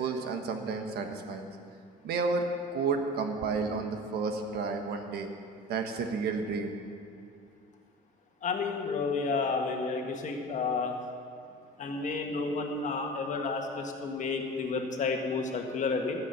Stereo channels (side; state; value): both; normal; correlation 0.34